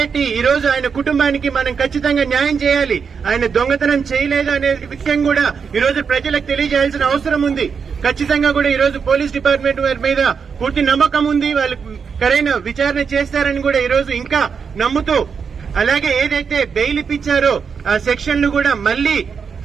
ఈ రోజు ఆయన కుటుంబానికి మనం ఖచ్చితంగా న్యాయం చేయాలి. ఆయన దొంగతనం చేయలేదు అనే విషయం కూడా ఈ రోజు ప్రజలకు తెలియజేయాల్సిన అవసరం ఉంది. ఖచ్చితంగా కూడా ఈ రోజు పోలీస్ డిపార్ట్మెంట్ వారి మీద పూర్తి నమ్మకం ఉంది. వాళ్ళు సరైన విచారణ చేస్తారని కూడా ఈ రోజు ఇంకా నమ్ముతూ, అలాగే ఏదైతే బెయిల్ ఇప్పించారో ఆ సెక్షన్లు కూడా మళ్లీ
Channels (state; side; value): quieter; left; 6.1 dB